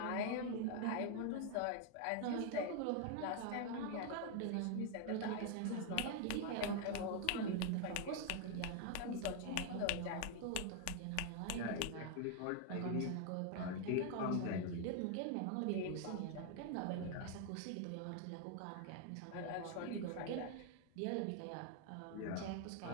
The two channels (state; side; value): different; both; correlation 0.00